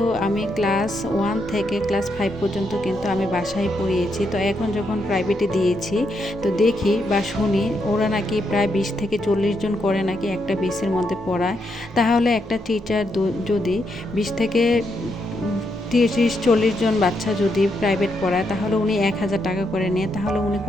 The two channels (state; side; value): normal; both; correlation 0.80